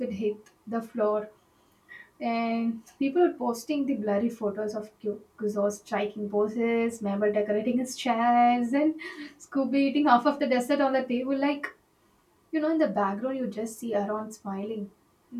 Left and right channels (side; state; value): both; identical; correlation 1.00